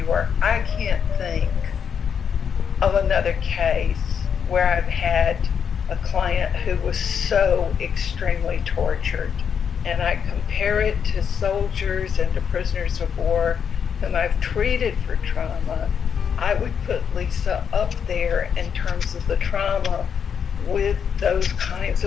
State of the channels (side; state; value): right; quieter; 7.3 dB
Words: work, I can't think of another case where I've had a client who was so extremely tortured. And I compare it to soldiers and to prisoners of war whom I've treated for trauma. I would put Lisa up there in terms of the trauma with those kinds